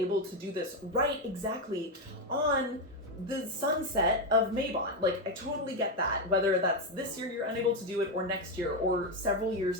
to do this right exactly on the sunset of Mabon. Like, I totally get that. Whether that's this year you're unable to do it, or next year, or several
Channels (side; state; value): both; normal; correlation 0.07